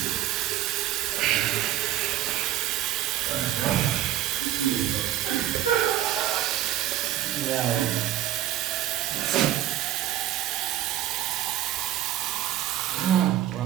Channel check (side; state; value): left; quieter; 13.0 dB